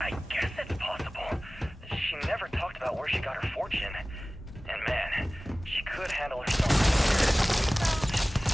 guess it's possible. She never talked about where she got her fortune. And man, she could handle herself.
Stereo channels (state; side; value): normal; both; correlation 0.98